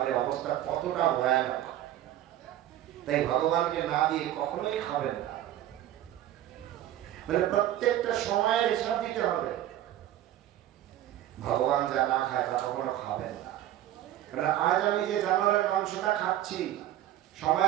অবস্থা কতটা ভয়ানক। তাই ভগবানকে না দিয়ে কখনোই খাবেন না, মানে প্রত্যেকটা সময়ের হিসাব দিতে হবে। ভগবান যা না খায় তা কখনো খাবেন না। কারণ আজ আমি যে জানোয়ারের মাংসটা খাচ্ছি,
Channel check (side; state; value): left; quieter; 12.8 dB